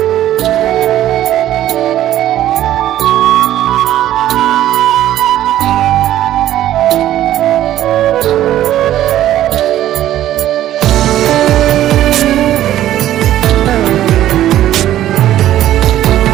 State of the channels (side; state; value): left; quieter; 12.8 dB